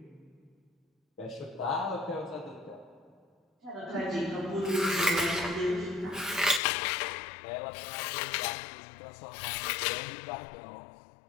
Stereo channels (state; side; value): drops out; right; at 6.6 s